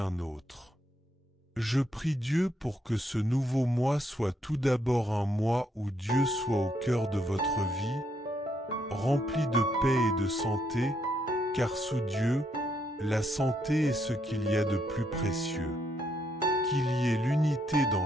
autre. Je prie Dieu pour que ce nouveau mois soit tout d'abord un mois où Dieu soit au cœur de votre vie, rempli de paix et de santé, car sous Dieu, La santé est ce qu'il y a de plus précieux. Qu'il y ait l'unité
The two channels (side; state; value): both; normal; correlation 0.75